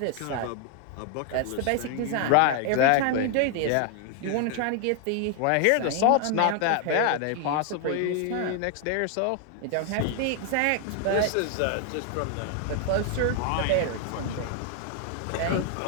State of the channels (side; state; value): both; different; correlation 0.00